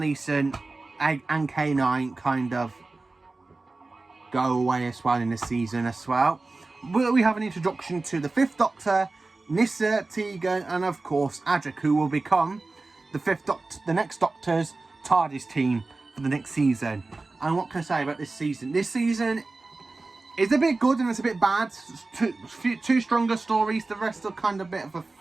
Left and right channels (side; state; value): left; quieter; 3.4 dB